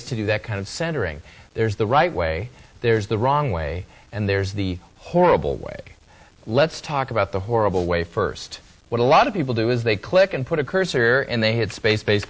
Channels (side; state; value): both; identical; correlation 1.00